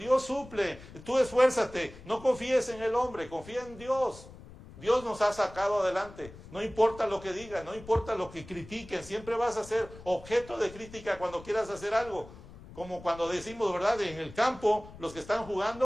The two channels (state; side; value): noise; left; rumble, 18 dB below the sound